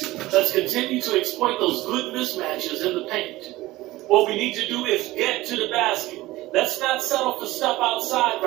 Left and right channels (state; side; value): quieter; left; 18.0 dB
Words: Let's continue to exploit those good mismatches in the paint. What we need to do is get to the basket. Let's not settle for stuff outside